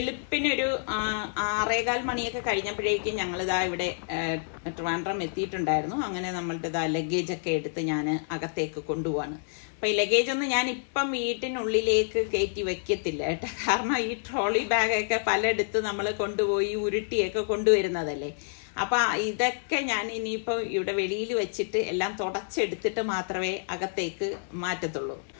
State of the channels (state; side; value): silent; right; digital silence